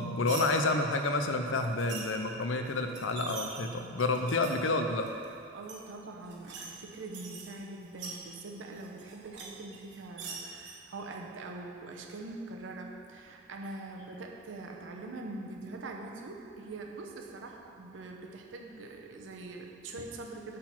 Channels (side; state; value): both; normal; correlation 0.12